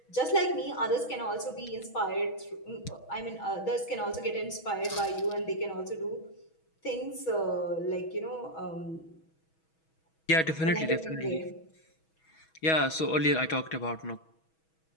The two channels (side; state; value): right; late; 6.2 ms